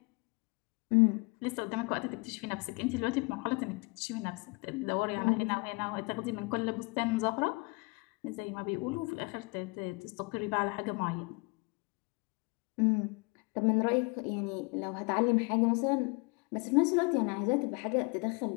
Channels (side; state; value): right; quieter; 29.6 dB